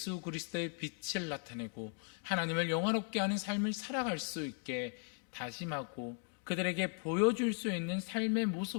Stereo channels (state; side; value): quieter; right; 39.8 dB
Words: 그리스도의 빛을 나타내고 하나님을 영화롭게 하는 삶을 살아갈 수 있게 다짐하고 그들에게 보여줄 수 있는 삶의